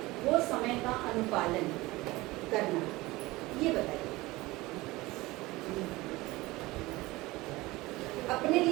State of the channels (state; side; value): quieter; left; 20.4 dB